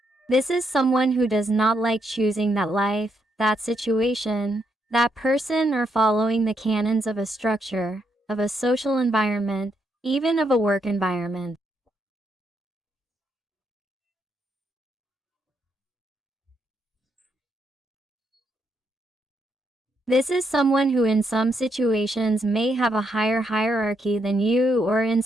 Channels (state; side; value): normal; both; correlation 0.78